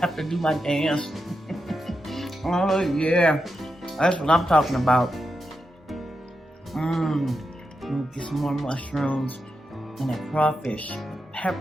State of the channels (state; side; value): normal; both; correlation 0.87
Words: to do my dance. Oh yeah, that's what I'm talking about. Get some more mushrooms and that crawfish